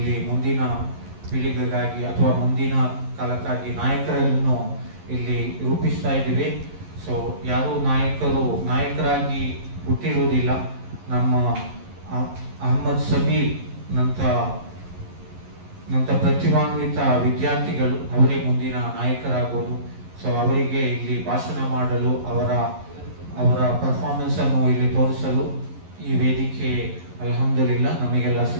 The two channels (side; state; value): left; late; 11 ms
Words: ಮುಂದಿನ ಪೀಳಿಗೆಗಾಗಿ ಅಥವಾ ಮುಂದಿನ ಕಾಲಕ್ಕಾಗಿ ನಾಯಕರನ್ನು ಇಲ್ಲಿ ರೂಪಿಸ್ತಾ ಇದ್ದೀವಿ. ಸೊ ಯಾರು ನಾಯಕರಾಗಿ ಹುಟ್ಟಿರುವುದಿಲ್ಲ. ನಮ್ಮ ಅಹಮ್ಮದ್ ಸಬೀರ್ ನಂತ ಪ್ರತಿಭಾನ್ವಿತ ವಿದ್ಯಾರ್ಥಿಗಳು ಅವರೇ ಮುಂದಿನ ನಾಯಕರಾಗೋದು. ಸೊ ಅವರಿಗೆ ಇಲ್ಲಿ ಭಾಷಣ ಮಾಡಲು ಅವರ ಪರ್ಫಾರ್ಮೆನ್ಸ್ ಅನ್ನು ಇಲ್ಲಿ ತೋರಿಸಲು ಈ ವೇದಿಕೆ ಅಲ್ಹಮ್ದುಲಿಲ್ಲಾ ನಮಗೆಲ್ಲ